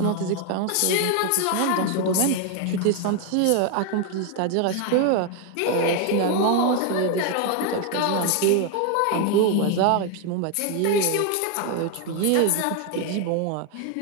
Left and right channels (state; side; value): different; both; correlation 0.01